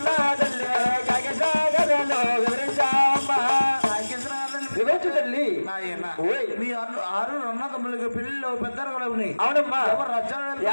తల్లి కాగసాగరలో వివరించావమ్మా వివరించు తల్లి. ఓయ్ మీ ఆరు రన్న తమ్ముళ్ళకి పెళ్లిలో పెద్దలు కూడా ఉన్నాయి. అవునమ్మా ఎవరు రచ్చన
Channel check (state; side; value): inverted; both; correlation -1.00